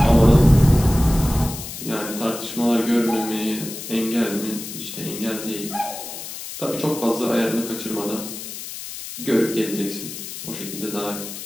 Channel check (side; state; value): left; noise; hiss, 10 dB below the sound